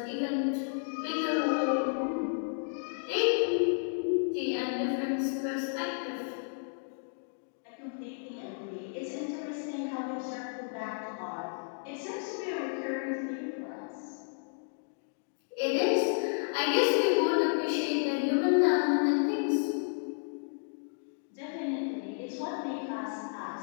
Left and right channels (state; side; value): silent; right; digital silence